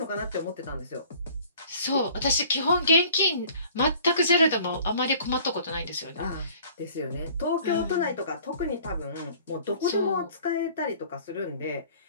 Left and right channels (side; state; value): both; inverted; correlation -0.51